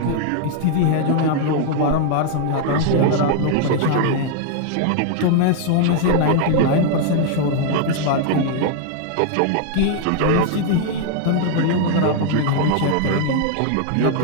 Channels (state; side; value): different; both; correlation 0.00